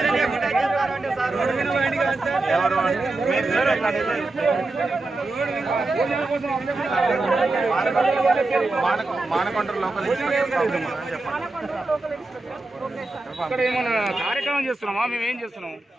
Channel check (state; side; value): quieter; left; 3.1 dB